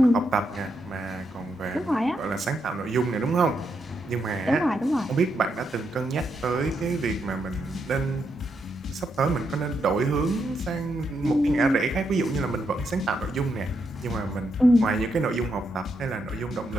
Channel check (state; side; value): normal; both; correlation 0.81